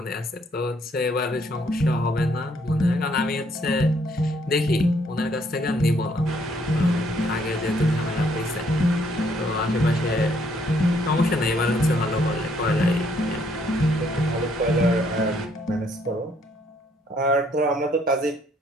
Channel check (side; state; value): both; normal; correlation 0.68